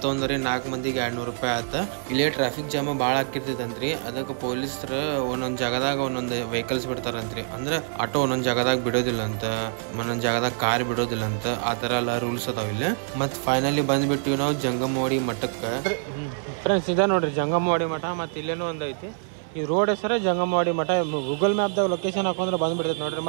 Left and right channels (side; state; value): left; silent; 61 dB below the other